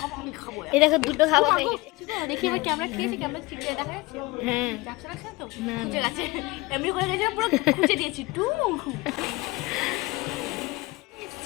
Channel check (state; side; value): quieter; right; 22.3 dB